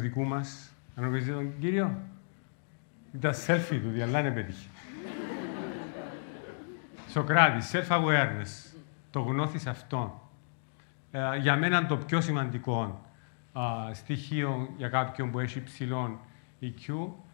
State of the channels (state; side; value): silent; right; digital silence